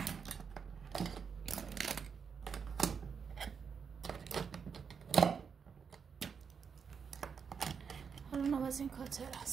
حالا نواز این کاتر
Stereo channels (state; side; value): quieter; left; 6.3 dB